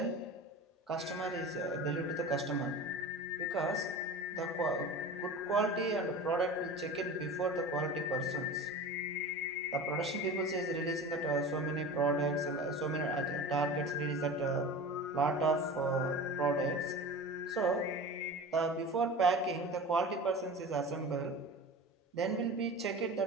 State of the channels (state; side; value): normal; both; correlation 0.34